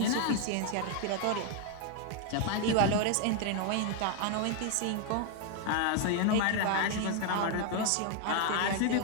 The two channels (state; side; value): different; both; correlation 0.00